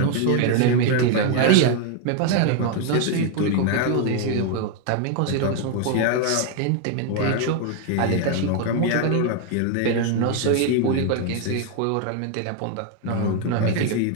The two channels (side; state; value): both; different; correlation 0.01